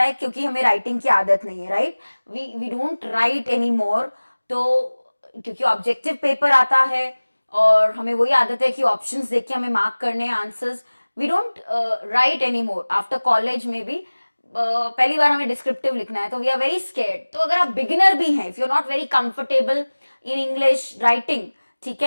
है क्योंकि हमें राइटिंग की आदत नहीं है, right? We don't write any more, तो क्योंकि ऑब्जेक्टिव पेपर आता है और हमें वही आदत है कि ऑप्शंस देख के हमें मार्क करने हैं answers. We don't write any more after college में भी. पहली बार हमें डिस्क्रिप्टिव लिखना है तो वी आर वेरी स्केर्ड. तो अगर आप बिगिनर भी हैं, if you are not very comfortable in English writing, ठीक है,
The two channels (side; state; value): both; inverted; correlation -1.00